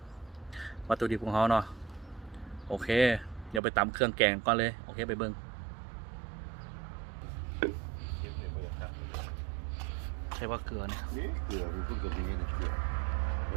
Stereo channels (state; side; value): drops out; left; at 3.6 s